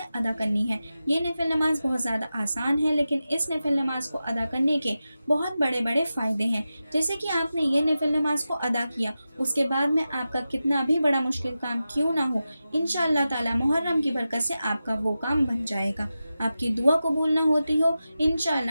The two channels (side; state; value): both; inverted; correlation -0.93